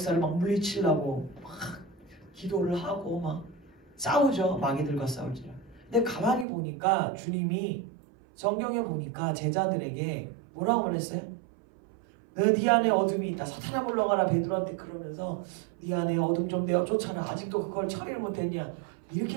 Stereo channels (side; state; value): left; drops out; at 6.5 s